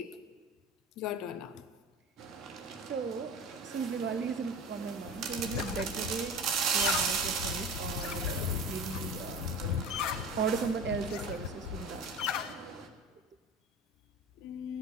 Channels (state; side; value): normal; both; correlation 0.34